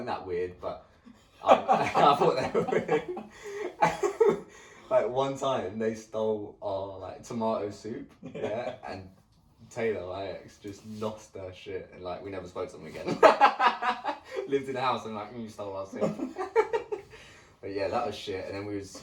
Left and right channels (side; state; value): both; identical; correlation 1.00